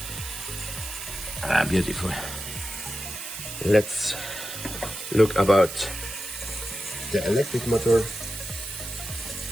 Ah, beautiful. Let's look about the electric motor.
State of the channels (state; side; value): noise; right; hiss, 8 dB below the sound